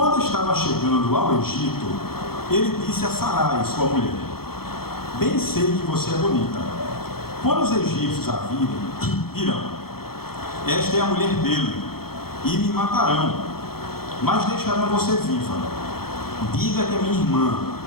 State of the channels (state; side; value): late; right; 0.94 ms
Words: estava chegando ao Egito, ele disse a Sarai, sua mulher: bem sei que você é bonita. Quando os egípcios a virem, dirão: esta é a mulher dele, e me matarão, mas deixarão você viva. Diga que é minha irmã,